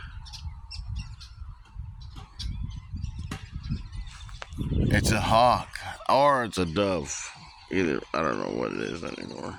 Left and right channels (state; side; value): identical; both; correlation 1.00